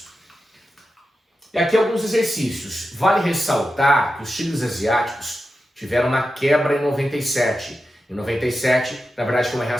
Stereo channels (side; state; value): both; normal; correlation 0.90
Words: E aqui alguns exercícios. Vale ressaltar que os tigres asiáticos tiveram uma quebra em 97. Em 97, na verdade, foi uma